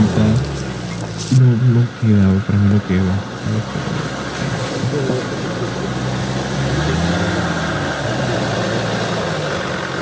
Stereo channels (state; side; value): identical; both; correlation 1.00